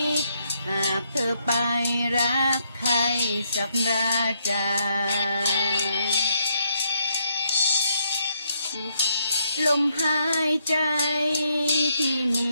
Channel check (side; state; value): both; inverted; correlation -0.75